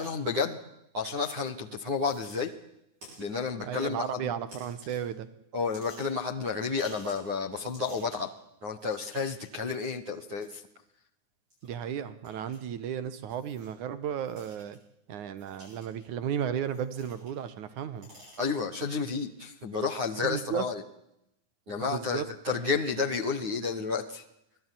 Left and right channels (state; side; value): late; left; 9.7 ms